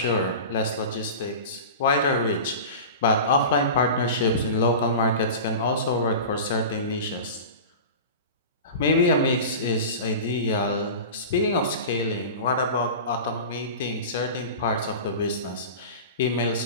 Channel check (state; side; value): inverted; both; correlation -0.32